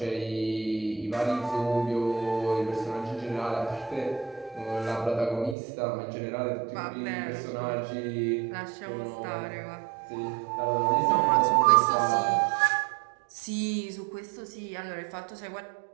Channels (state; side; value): drops out; left; at 5.6 s